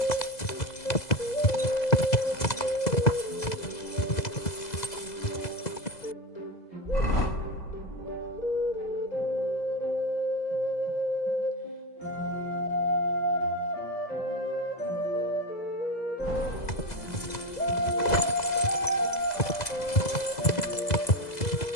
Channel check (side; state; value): right; late; 2.0 ms